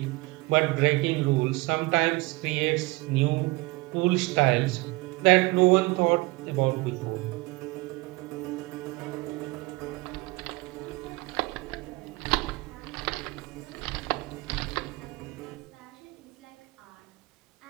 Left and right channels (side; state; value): left; quieter; 23.4 dB